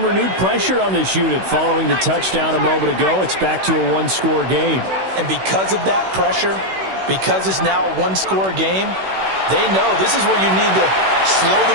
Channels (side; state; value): left; late; 16 ms